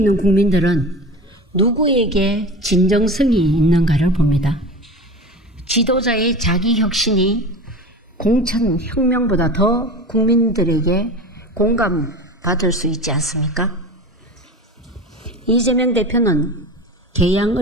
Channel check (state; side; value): normal; both; correlation 0.31